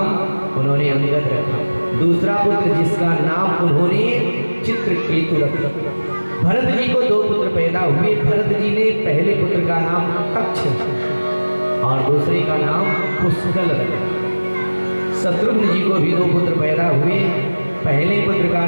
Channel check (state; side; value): inverted; both; correlation -1.00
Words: उन्होंने अंगद रखा। दूसरा पुत्र जिसका नाम उन्होंने चित्रकेतु रखा। भरत जी को 2 पुत्र पैदा हुए। भरत जी ने पहले पुत्र का नाम तक्ष और दूसरे का नाम पुष्कल रखा। शत्रुघ्न जी को भी 2 पुत्र पैदा हुए। पहले पुत्र का